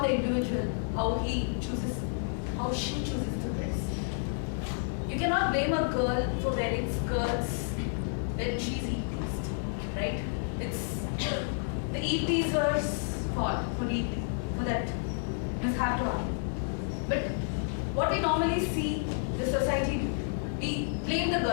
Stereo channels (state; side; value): silent; right; 57 dB below the other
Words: the individual, how she chooses to dress. You cannot blame a girl for wearing skirts when she's eat-pleased, right? It's the eat-pleaser's fault for that mishap to happen. But what we normally see the society do, we blame the